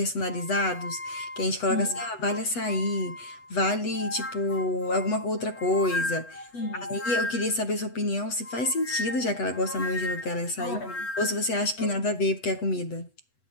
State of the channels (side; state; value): right; late; 8.1 ms